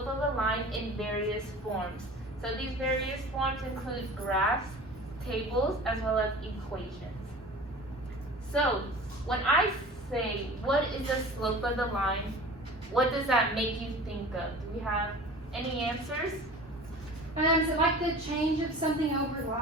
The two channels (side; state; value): both; normal; correlation 0.40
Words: of a line in various forms. So these various forms include graphs, tables, as well as equations. So when I say, what is the slope of the line, what does that make you think of? Do we have any answers? Is it like the change of something